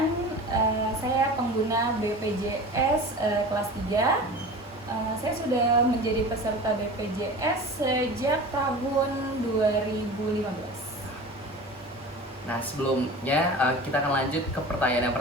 saya pengguna BPJS kelas 3. Saya sudah menjadi peserta BPJS sejak tahun 2015. Nah, sebelumnya kita akan lanjut ke pertanyaan yang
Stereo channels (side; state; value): both; normal; correlation 0.35